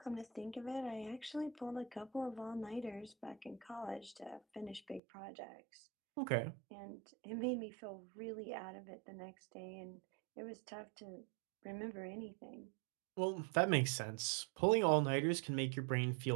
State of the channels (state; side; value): drops out; left; at 5.0 s